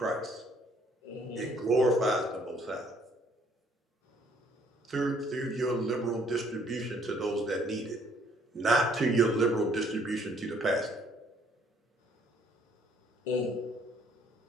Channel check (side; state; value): both; normal; correlation 0.62